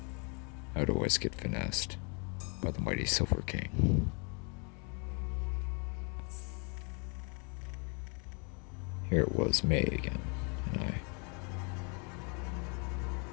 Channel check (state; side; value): quieter; right; 35.6 dB